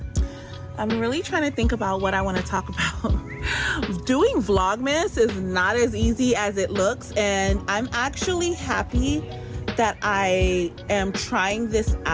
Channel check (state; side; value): identical; both; correlation 1.00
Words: I'm really trying to think about what I want to talk about. Doing Vlogmas is not as easy as it looks, and I'm actually happy that I am trying this